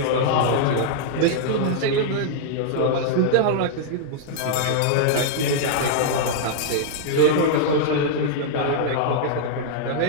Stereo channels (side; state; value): both; different; correlation -0.01